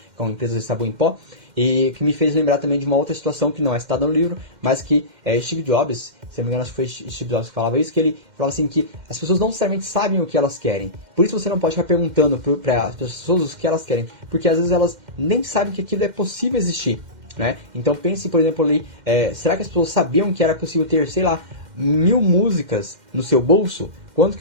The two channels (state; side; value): late; left; 2.1 ms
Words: com uma empresa de sabão em pó. E que me fez lembrar também de uma outra situação que não é citada no livro, mas que Steve Jobs, se não me engano, acho que foi Steve Jobs que falava isso, que ele falava assim que as pessoas não necessariamente sabem o que elas querem. Por isso você não pode ficar perguntando para as pessoas o que elas querem, porque às vezes elas nem sabem que aquilo é possível existir, né? Então pense, por exemplo, ali, será que as pessoas sabiam que era possível ter, sei lá, 1000 músicas no seu bolso? Quanto